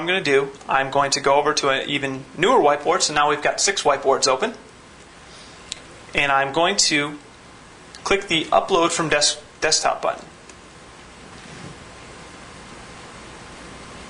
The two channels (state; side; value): identical; both; correlation 1.00